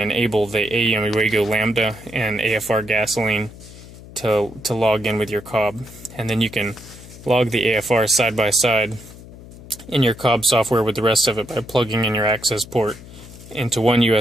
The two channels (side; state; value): left; noise; hum, 17 dB below the sound